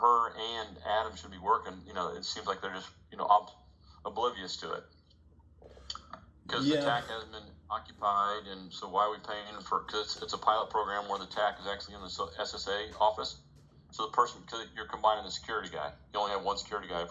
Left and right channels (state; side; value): identical; both; correlation 1.00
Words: and Adam should be working, it seems like they're just, oblivious to it. Because the TAC hasn't been occupied, and so why are we paying for? Because it's a pilot program where the TAC is actually in the SSA office. So the person, because you're combining the security guy, you only have one security guy